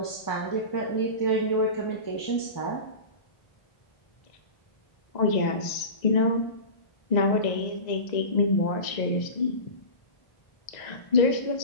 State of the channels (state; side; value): late; right; 1.9 ms